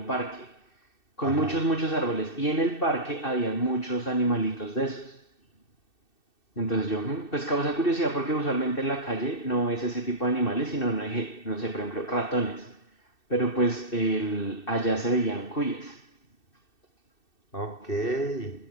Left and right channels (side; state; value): right; late; 2.6 ms